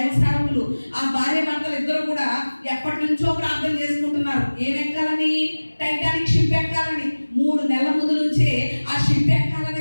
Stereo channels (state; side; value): inverted; both; correlation -1.00